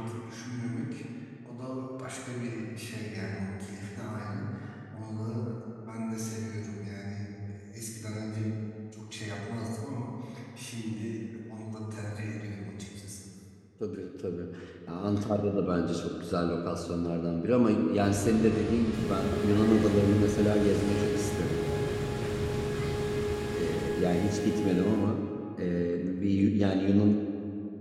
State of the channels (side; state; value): both; identical; correlation 1.00